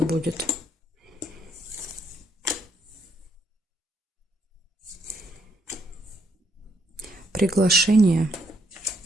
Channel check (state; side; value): normal; both; correlation 0.72